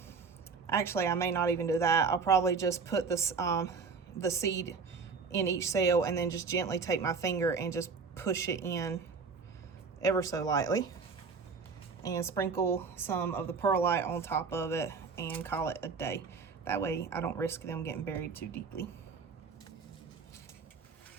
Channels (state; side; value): quieter; left; 5.0 dB